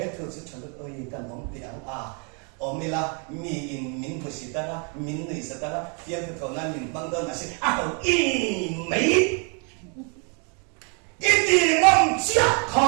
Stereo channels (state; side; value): quieter; left; 37.2 dB